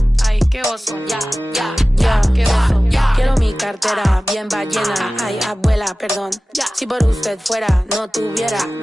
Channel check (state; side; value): normal; both; correlation 0.97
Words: Ay, qué oso. Ya, qué oso. Quiero mi cartera bien ballena. Ay, abuela, perdón. Si por usted fuera, no tuviera